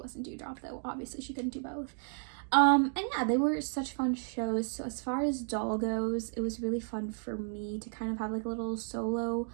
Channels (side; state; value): left; silent; 56 dB below the other